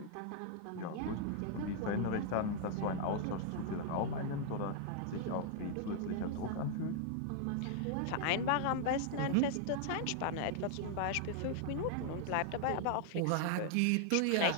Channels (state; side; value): different; both; correlation 0.00